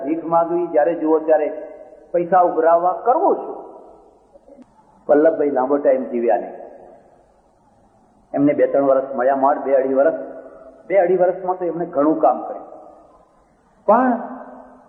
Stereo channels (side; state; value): both; identical; correlation 1.00